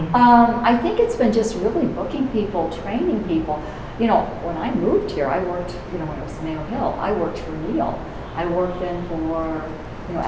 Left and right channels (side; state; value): both; identical; correlation 1.00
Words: I think it's been just really booking people, training people. You know, when I moved here, I worked, you know, when it was Neal Hamil, I worked for Neal. I worked then for, you know,